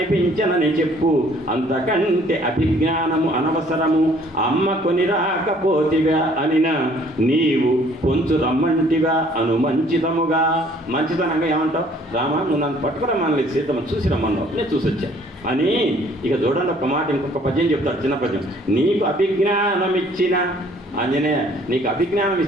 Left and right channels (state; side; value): normal; both; correlation 0.58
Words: చెప్పు, అంతకంటే అభిజ్ఞానము అనవసరము. అమ్మ కొని రాకపోతివా అనినా, నీవు కొంచెం రమ్మంటివా అను మంచితముగా. మంచితనంగా ఏమంటావు? రామా నువ్వు నన్ను పట్టుకురమ్మని సీతమ్మ చూసి రమ్మన్నావు, నేను చూసి వచ్చా అని. ఇక చూడండి ఒక మాట, ఇంకొక పద్యం చెప్తాడు, చిన్న పద్యం. నీకు అభిజ్ఞానం ఇచ్చిన ఆంజనేయ, నీకు అభిజ్ఞానం